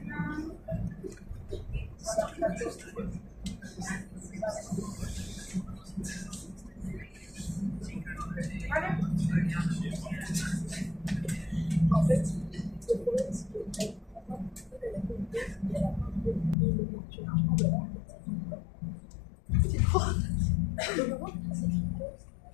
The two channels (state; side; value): drops out; right; at 16.6 s